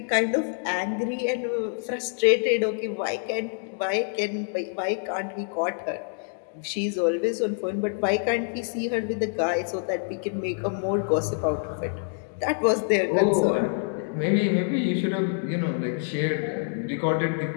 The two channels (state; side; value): silent; right; 61 dB below the other